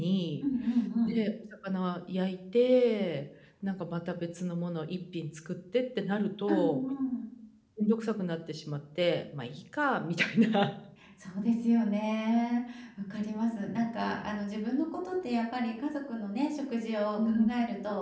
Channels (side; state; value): both; identical; correlation 1.00